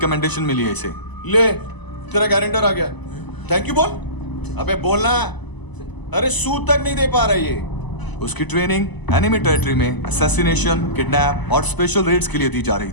मिली है इसे। ले, तेरा गारंटर आ गया। थैंक यू बोल। अबे बोलना। अरे सूद तक नहीं दे पा रहा ये। उसकी ट्रेनिंग एनिमी टेरिटरी में असैसिनेशन, किडनैप और स्पेशल रेड्स के लिए दी जा रही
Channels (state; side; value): late; right; 1.0 ms